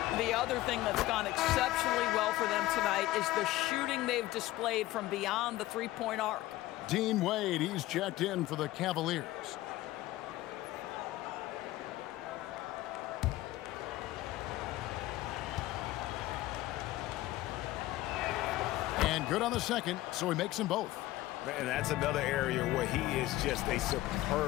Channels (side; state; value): right; quieter; 16.6 dB